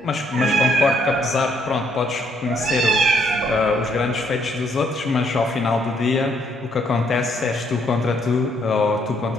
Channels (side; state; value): both; normal; correlation 0.70